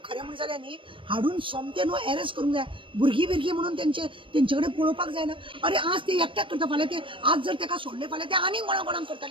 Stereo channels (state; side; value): late; left; 0.25 ms